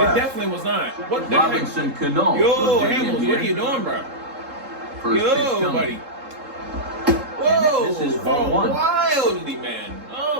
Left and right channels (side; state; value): left; late; 3.7 ms